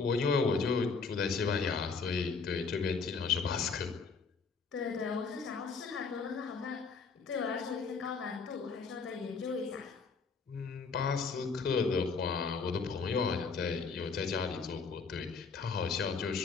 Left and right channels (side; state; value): right; quieter; 4.9 dB